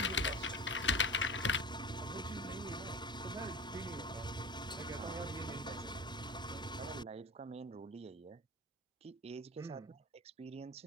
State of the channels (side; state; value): both; normal; correlation 0.31